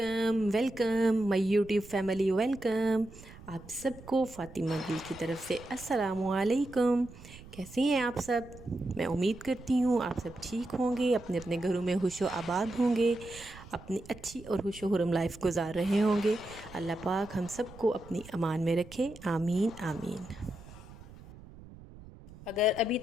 welcome my YouTube family welcome. आप सबको फ़ातिमा गिल की तरफ से अस्सलामु अलैकुम। कैसे हैं आप सब? मैं उम्मीद करती हूँ आप सब ठीक होंगे, अपने अपने घरों में खुशो आबाद होंगे, अपनी अच्छी और खुशो खुरम लाइफ गुजार रहे होंगे। अल्लाह पाक हम सबको अपनी अमान में रखे, आमीन आमीन। अगर अभी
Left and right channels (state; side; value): noise; right; rumble, 18 dB below the sound